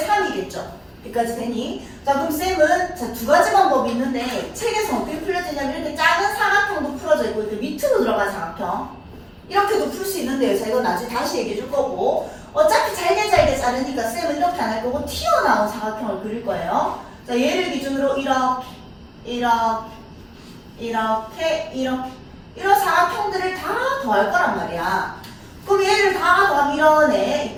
3이겠죠. 여기까지 되니? 자, 그럼 쌤은 자, 두 가지 방법이 있는데 책에서 어떻게 풀려지냐면 이렇게 작은 사각형도 풀어져 있고 이렇게 밑으로 들어간 사각형 이렇게도 풀 수 있는데요. 자, 이건 나중에 다시 얘기해 줄 거고 어차피 잘게 자르니까 쌤은 이렇게 안 할 거고 튀어나온 사각형을 그릴 거예요. 자, 얘를 기준으로 이렇게 이런 사각형들을 다 더할 거란 말이야. 그럼 얘를 다 더하면 이런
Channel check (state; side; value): identical; both; correlation 1.00